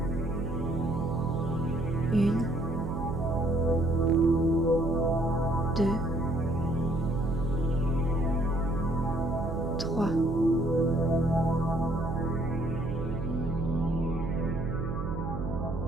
1, 2, 3.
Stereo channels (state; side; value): noise; right; hum, 5 dB below the sound